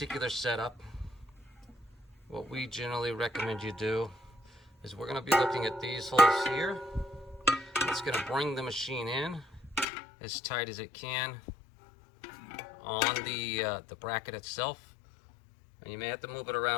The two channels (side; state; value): right; drops out; at 9.9 s